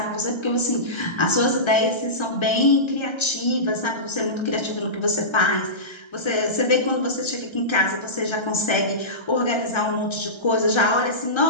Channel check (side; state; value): right; late; 1.3 ms